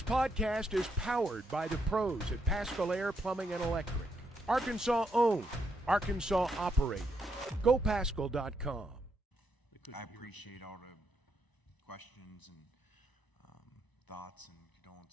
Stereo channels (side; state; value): both; normal; correlation 0.77